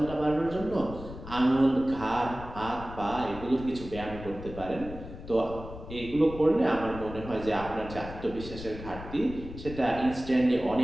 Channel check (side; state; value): left; noise; rumble, 12 dB below the sound